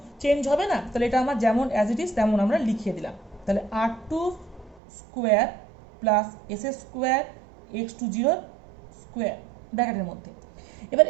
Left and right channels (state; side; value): drops out; left; at 4.8 s